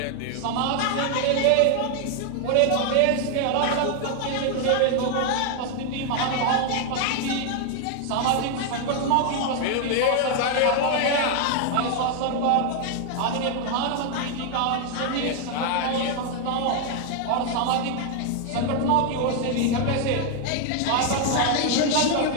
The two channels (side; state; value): both; different; correlation 0.00